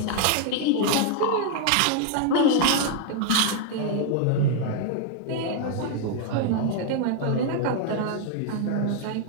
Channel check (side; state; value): both; different; correlation 0.00